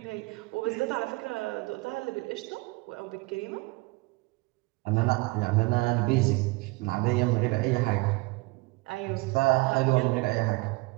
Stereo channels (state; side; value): quieter; left; 24.1 dB